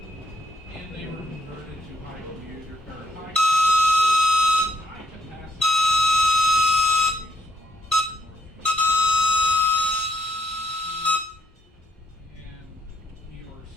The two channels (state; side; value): normal; both; correlation 0.74